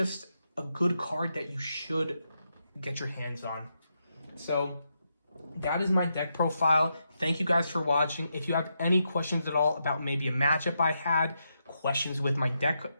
a good card that you should get your hands on. So that is my deck profile. Thank you guys for watching. If you have any questions at all about maybe a matchup I had, questions with my deck,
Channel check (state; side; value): inverted; both; correlation -0.83